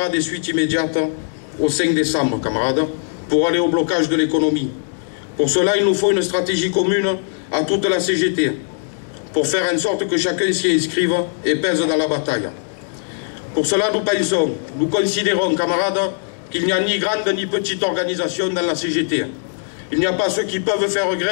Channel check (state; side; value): silent; right; digital silence